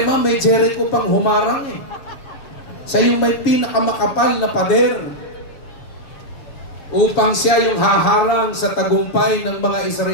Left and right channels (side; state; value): right; late; 7.2 ms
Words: may Jericho pang humarang eh. Siya yung may pinakamakapal na pader upang siya yung haharang sa tagumpay ng mga